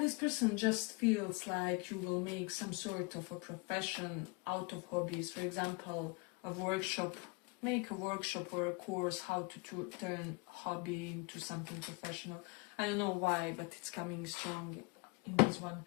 person just feels like you will make some sort of a profession out of hobbies. For example, a workshop, make a workshop or a course how to turn hobby into something professional. I don't know why, but it's coming strong in this one.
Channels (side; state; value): right; quieter; 29.5 dB